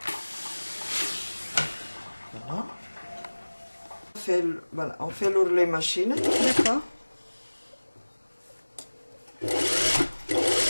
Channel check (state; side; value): inverted; both; correlation -1.00